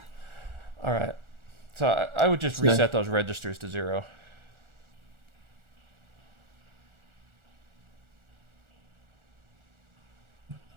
All right. So I would just reset those registers to 0.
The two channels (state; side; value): late; left; 1.4 ms